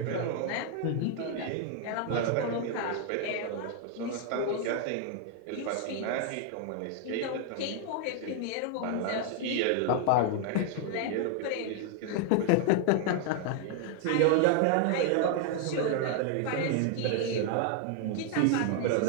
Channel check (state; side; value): different; both; correlation 0.00